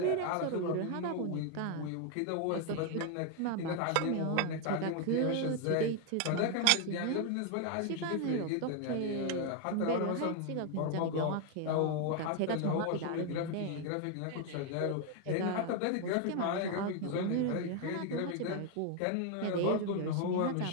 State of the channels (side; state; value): both; different; correlation 0.01